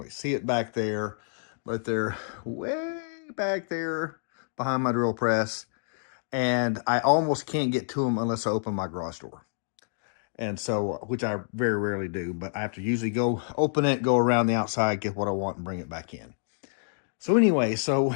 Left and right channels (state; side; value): silent; right; digital silence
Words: see it back there, but they're way back there behind my drill press. And I almost can't get to them unless I open my garage door. And so, which I very rarely do, but I have to usually go open it, go around the outside, get what I want, and bring it back in. So anyway, so